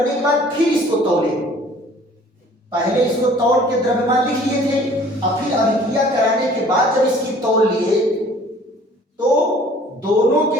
के बाद फिर इसको तौले, पहले इसको तौल के द्रव्यमान लिख लिए थे, अब फिर अभिक्रिया कराने के बाद जब इसकी तौल लिए तो दोनों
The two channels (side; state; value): both; normal; correlation 0.53